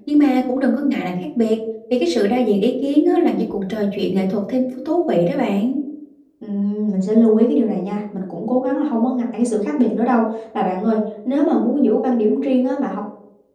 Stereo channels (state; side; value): identical; both; correlation 1.00